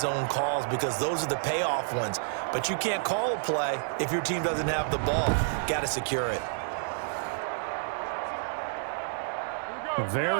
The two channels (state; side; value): silent; left; digital silence